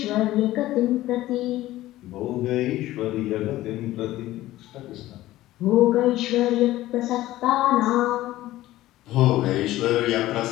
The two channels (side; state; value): right; quieter; 15.8 dB